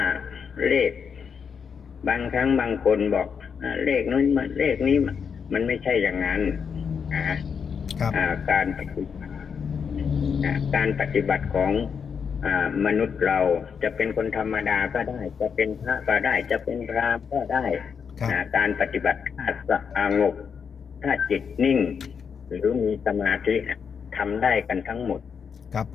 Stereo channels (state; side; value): quieter; right; 6.6 dB